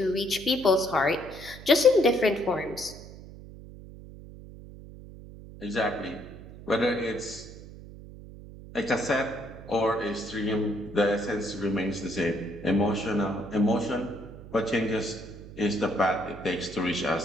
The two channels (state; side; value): noise; right; hum, 16 dB below the sound